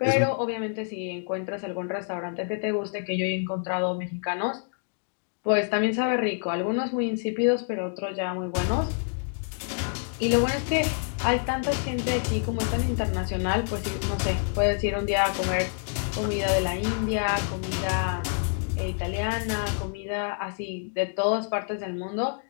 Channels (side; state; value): right; silent; 58 dB below the other